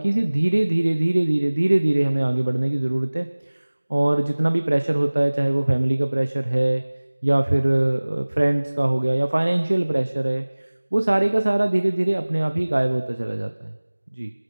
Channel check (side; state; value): both; inverted; correlation -1.00